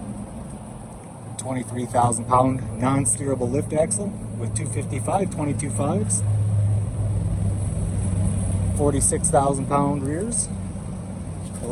23,000-pound non-steerable lift axle with 255 22.5s, 46,000-pound rears,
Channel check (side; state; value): both; identical; correlation 1.00